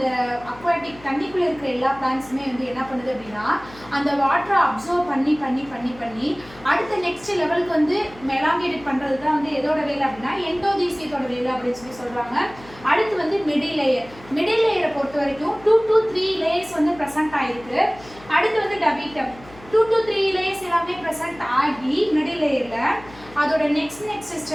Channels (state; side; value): noise; left; hum, 21 dB below the sound